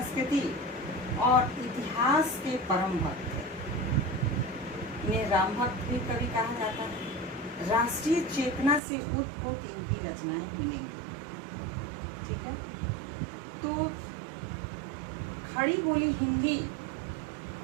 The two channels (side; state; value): left; drops out; at 8.8 s